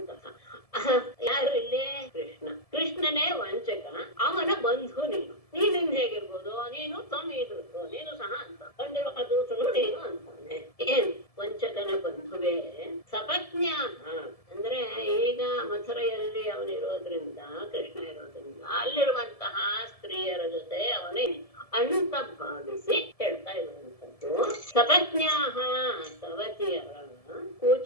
ಯಾರು ಇಲ್ಲಿ? ಕೃಷ್ಣ. ಕೃಷ್ಣನೇ ವಂಚಕ, ಅವನ ಬಂಧು ನೀನು. ನೀನಿಂದ ಹೇಗಿರ್ಬೋದು? ನೀನು ಇದ್ರು ನೀನು ಸಹ ಅಂತ ಬಂದಿರುವ ದೂತನು ನೀನು ಅಂತಾನೆ. ಏನ್ ವಂಚಕನ ಬಂಧುವೇ. ಸಪತ್ನ್ಯಾ ಅಂದ್ರೆ ಈಗ ಮಥುರೆಯಲ್ಲಿ ಅವನಿರೋದ್ರಿಂದ, ಕೃಷ್ಣ ಇರೋದ್ರಿಂದ ಅಲ್ಲಿರುವಂತಹ ಸ್ತ್ರೀಯರ ಜೊತೆ ಅವನೇ ಅಂತ ಭಾವಿಸಿ ಹೇಳ್ತಾ ಇರುವಂತದ್ದು. ಸಪತ್ನ್ಯಾಹ ಸವತಿಯರ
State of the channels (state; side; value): late; right; 1.7 ms